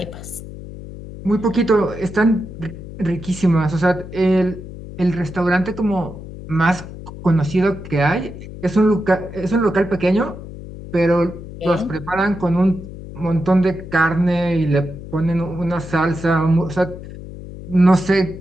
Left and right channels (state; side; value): noise; left; hum, 13 dB below the sound